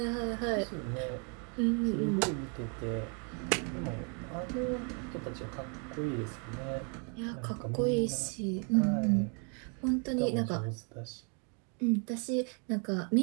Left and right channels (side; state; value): left; quieter; 37.9 dB